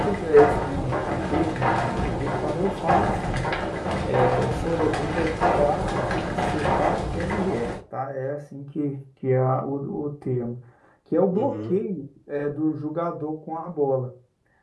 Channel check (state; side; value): identical; both; correlation 1.00